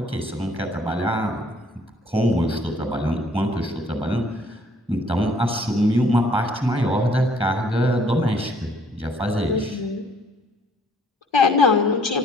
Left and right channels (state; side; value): normal; both; correlation 0.61